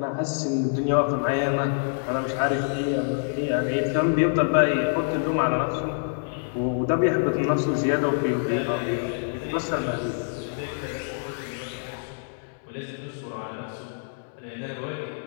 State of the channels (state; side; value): silent; right; digital silence